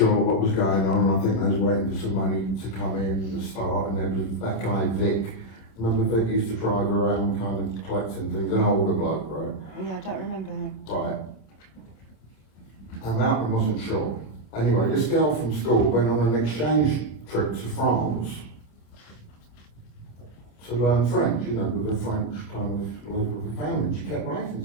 what was going on, and I think I was waiting for some money to come in to start, and there was that guy Vic. Remember Vic used to drive around kind of collecting things, an older bloke, right? Yeah, I don't remember him. Right. And Malcolm wasn't sure. Anyway, this girl from school went on an exchange trip to France to learn French, you know, with a French kind of local family. She kept writing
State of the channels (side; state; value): right; late; 27 ms